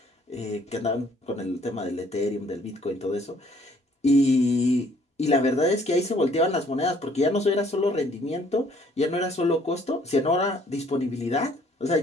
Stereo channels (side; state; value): both; normal; correlation 0.61